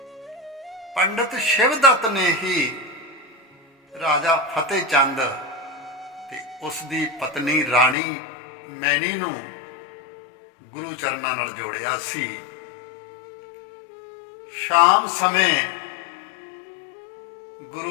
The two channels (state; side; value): drops out; right; at 8.0 s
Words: ਪੰਡਤ ਸ਼ਿਵਦੱਤ ਨੇ ਹੀ ਰਾਜਾ ਫਤਿਹ ਚੰਦ ਤੇ ਉਸ ਦੀ ਪਤਨੀ ਰਾਣੀ ਮੈਣੀ ਨੂੰ ਗੁਰੂ ਚਰਨਾਂ ਨਾਲ ਜੋੜਿਆ ਸੀ। ਸ਼ਾਮ ਸਮੇਂ